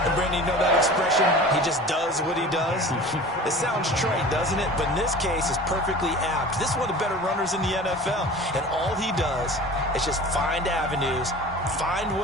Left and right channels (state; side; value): normal; both; correlation 0.39